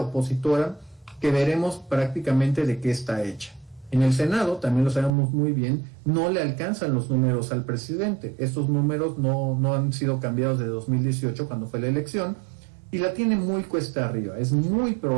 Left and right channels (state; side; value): drops out; left; at 5.1 s